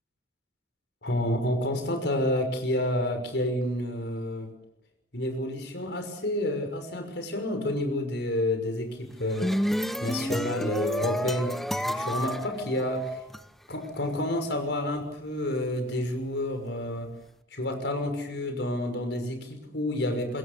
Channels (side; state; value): both; normal; correlation 0.42